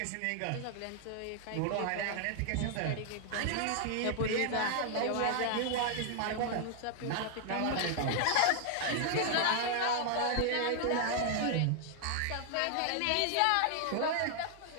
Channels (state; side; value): different; both; correlation 0.00